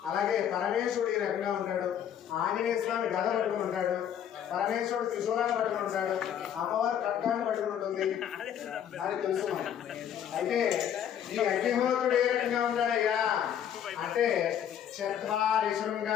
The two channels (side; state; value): right; quieter; 9.5 dB